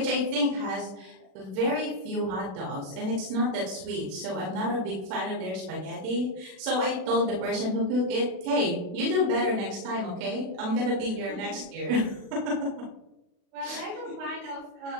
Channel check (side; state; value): left; late; 32 ms